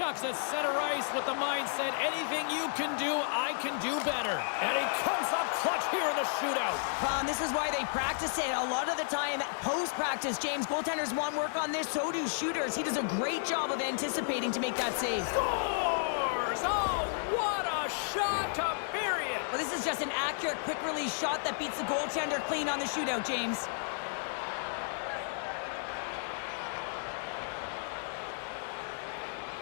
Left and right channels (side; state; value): right; silent; digital silence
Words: at center ice with the mindset, anything you can do, I can do better. And he comes up clutch here in the shootout. This is why they practice it. A lot of the time, post-practice, James, goaltenders want work on this, so do shooters. He does a great job of anticipating to make that save. Scores! Oh, what a shot to bury it! Well, this is just an accurate, quick-release shot that beats the goaltender clean on the shootout, James.